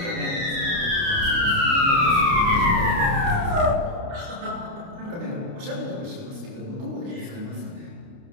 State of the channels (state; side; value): late; left; 29 ms